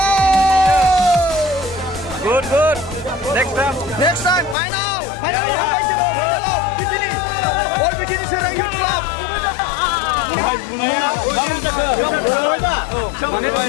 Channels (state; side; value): drops out; right; at 4.5 s